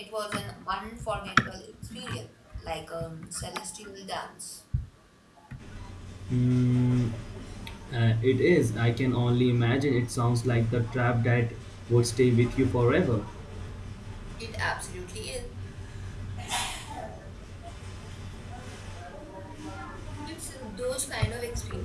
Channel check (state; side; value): identical; both; correlation 1.00